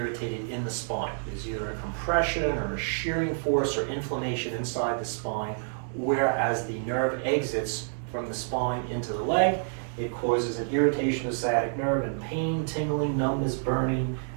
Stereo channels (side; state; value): left; silent; digital silence